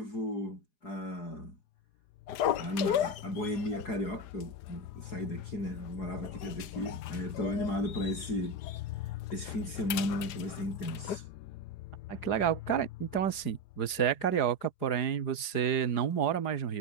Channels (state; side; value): late; right; 4.9 ms